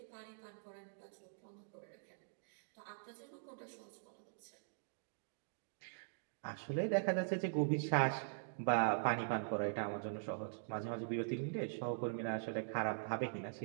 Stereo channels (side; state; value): left; silent; digital silence